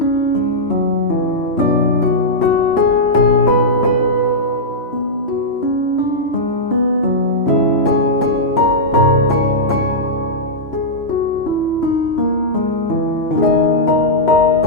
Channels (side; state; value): right; late; 3.0 ms